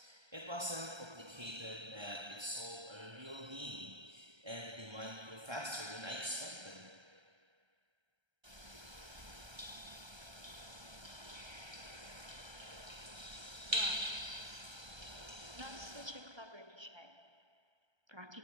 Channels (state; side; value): late; left; 1.3 ms